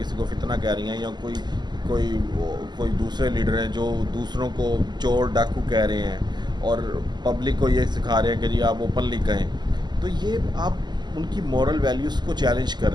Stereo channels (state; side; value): late; left; 0.21 ms